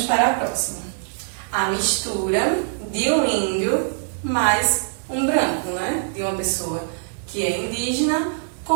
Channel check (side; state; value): left; silent; digital silence